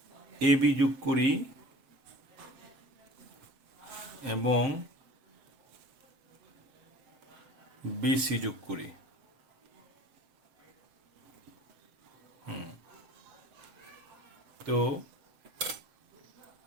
এ বি যোগ করি এবং বিসি যোগ করি। তো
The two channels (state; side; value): late; left; 7.8 ms